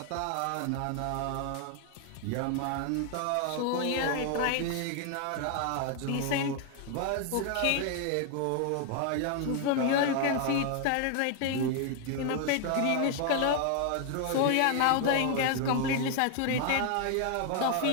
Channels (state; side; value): different; both; correlation 0.00